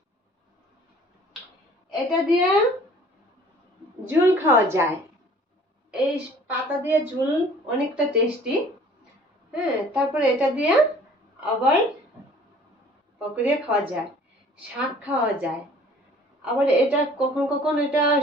এটা দিয়ে ঝুল খাওয়া যায়, এই পাতা দিয়ে ঝুল অনেকটা টেস্টি। হ্যাঁ, তারপরে এটা দিয়ে আবার পকোড়া খাওয়া যায়, শাক খাওয়া যায়। আবার এটা কখন কখন এটা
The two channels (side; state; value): both; normal; correlation 0.52